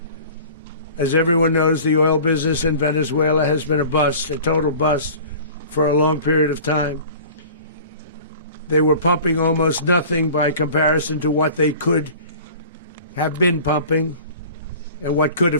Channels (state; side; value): inverted; both; correlation -0.42